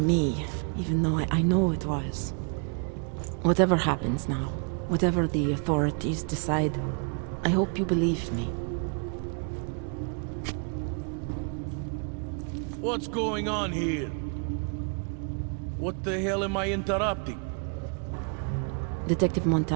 me, even though I know it was. Whatever happens now, whatever the authorities decide, I hope you believe me. What's going on here? What the hell am I interrupting? Detective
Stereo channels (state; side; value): quieter; left; 39.6 dB